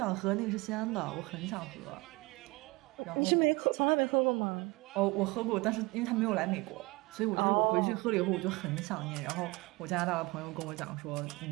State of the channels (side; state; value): left; quieter; 23.8 dB